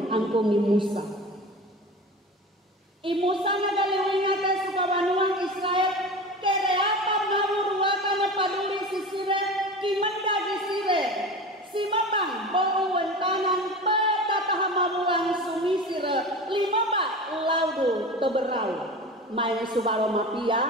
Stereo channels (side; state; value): both; normal; correlation 0.32